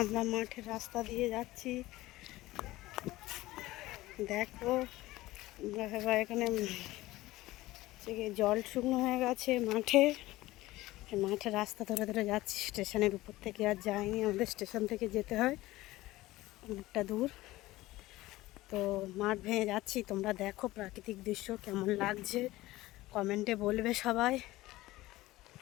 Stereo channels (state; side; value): quieter; right; 17.8 dB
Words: আমরা মাঠের রাস্তা দিয়ে যাচ্ছি। দেখো আমরা এখানে জল শুকনো হয়ে গেছে মাঠে। মাঠের রাস্তা ধরে ধরে যাচ্ছি। স্টেশনের উপর থেকে আর যাইনি, আমাদের স্টেশন থেকে যেতে হয় অনেকটা দূর। তো মাঠ ভেঙে যাচ্ছি। তোমরা দেখো প্রাকৃতিক দৃশ্য কেমন লাগছে, কমেন্টে বলবে সবাই।